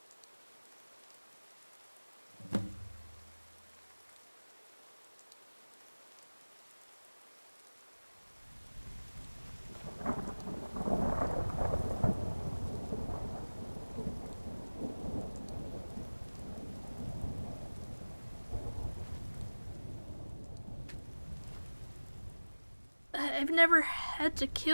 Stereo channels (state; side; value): inverted; both; correlation -1.00